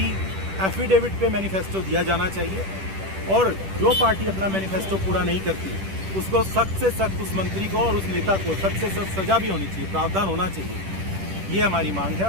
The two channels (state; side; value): late; left; 10 ms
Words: एफिडेविट पे मैनिफेस्टो दिया जाना चाहिए और जो पार्टी अपना मैनिफेस्टो पूरा नहीं करती उसको सख्त से सख्त, उस मंत्री को और उस नेता को सख्त से सख्त सजा भी होनी चाहिए, प्रावधान होना चाहिए। ये हमारी मांग है